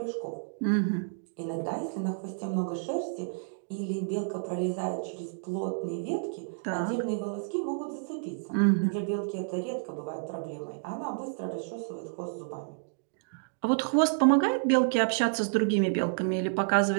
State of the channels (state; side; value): silent; left; digital silence